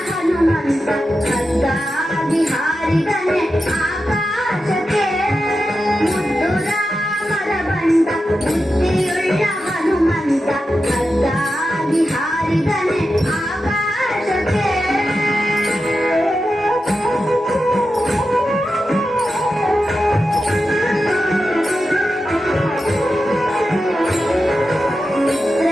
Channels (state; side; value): normal; both; correlation 0.90